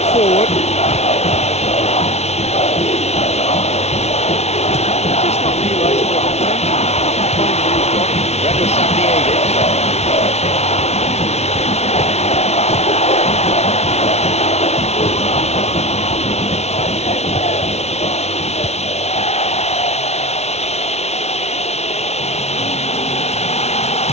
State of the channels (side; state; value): right; late; 0.31 ms